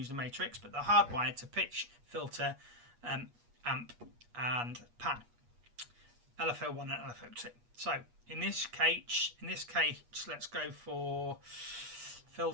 the matrix, but they're hardwired to pitch, filter, amp, and pan. LFO1 and LFO2. So in this case, let's go for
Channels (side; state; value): left; late; 8.4 ms